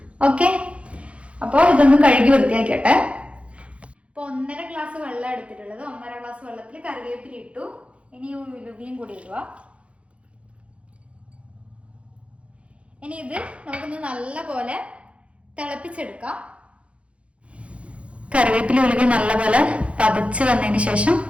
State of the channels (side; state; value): left; late; 0.061 ms